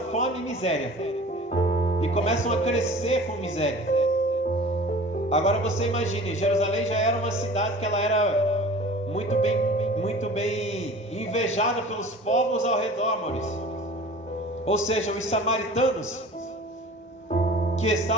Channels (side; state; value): both; normal; correlation 0.42